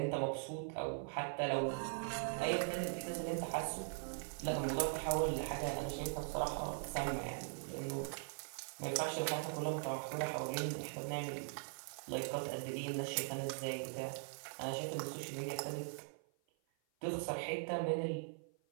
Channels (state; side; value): silent; left; 50 dB below the other